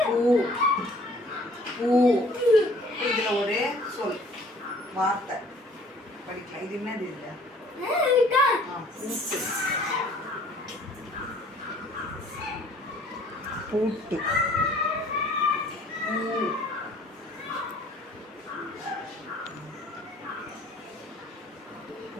பூ. பூ. இதில் ஒரு சொல் வார்த்தை படிக்கலாம். இது என்னது இது? பூட்டு. பூட்டு. பூ.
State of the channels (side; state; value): both; normal; correlation 0.56